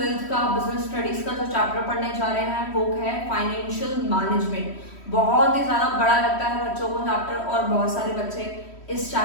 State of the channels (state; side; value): late; right; 3.1 ms